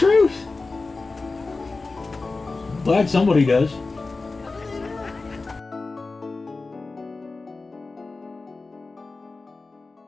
I'm glad somebody does.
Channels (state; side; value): quieter; right; 3.7 dB